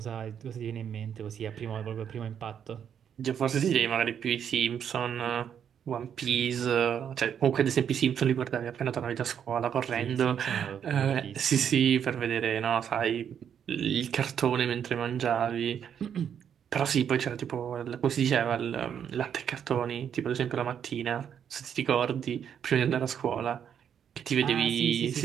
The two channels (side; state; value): left; quieter; 8.4 dB